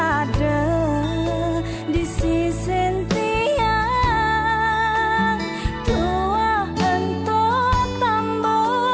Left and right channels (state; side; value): identical; both; correlation 1.00